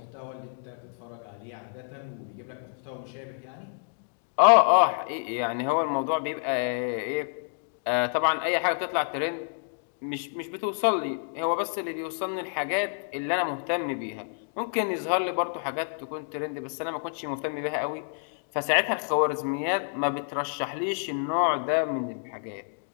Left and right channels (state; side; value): silent; right; digital silence